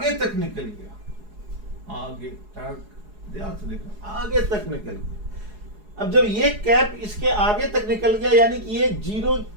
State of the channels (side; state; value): left; late; 4.8 ms